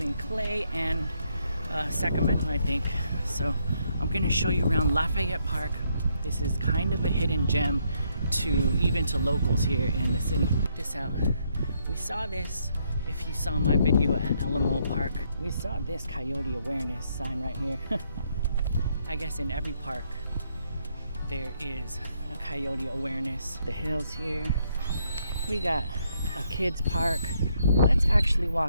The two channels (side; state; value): both; inverted; correlation -0.73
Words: Clay and Sacramento, I think. So I'm gonna show you around Lafayette Park. This is kind of a hidden gem even to locals here in the city. Check this out. We saw this, if you saw my video at Alamo Park, we saw this coyote awareness sign right here. I guess in every park there is a coyote awareness. The hills here. We got a kids park. Let's actually